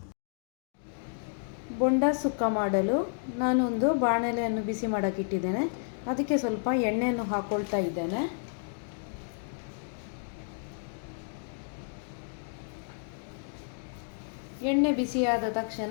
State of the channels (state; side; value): silent; right; digital silence